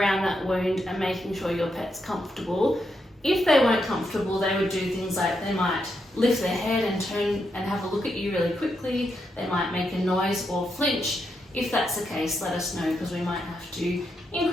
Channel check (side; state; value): both; normal; correlation 0.82